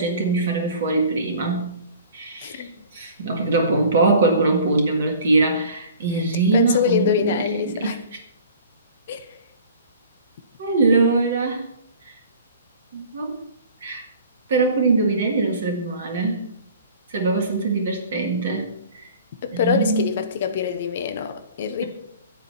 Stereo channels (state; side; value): inverted; both; correlation -0.47